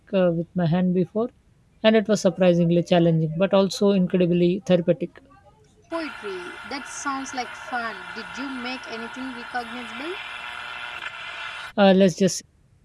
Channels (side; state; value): both; identical; correlation 1.00